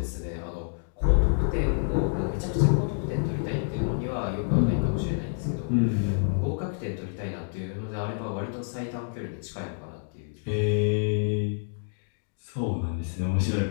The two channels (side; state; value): right; silent; digital silence